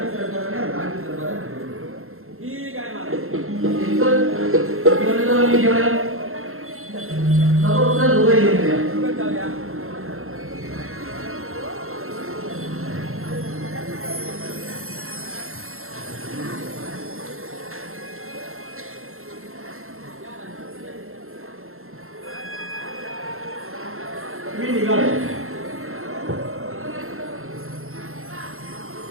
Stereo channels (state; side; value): late; left; 0.62 ms